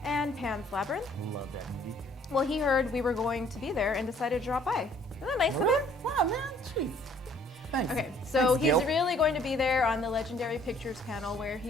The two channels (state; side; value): normal; both; correlation 0.59